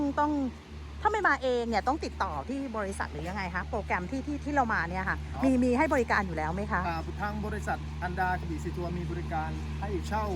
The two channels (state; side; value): identical; both; correlation 1.00